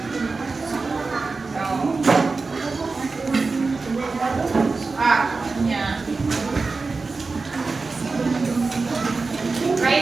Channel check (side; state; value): left; quieter; 4.0 dB